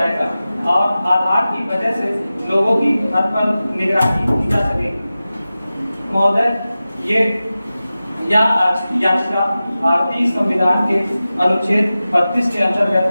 और आधार की वजह से लोगों की हद पर निगरानी की जा सकेगी। महोदय, याचिका भारतीय संविधान के अनुच्छेद 32 के अंतर्गत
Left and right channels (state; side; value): inverted; both; correlation -0.95